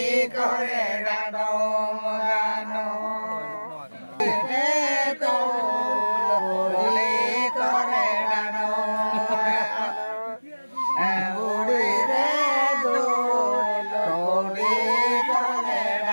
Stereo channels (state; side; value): inverted; both; correlation -1.00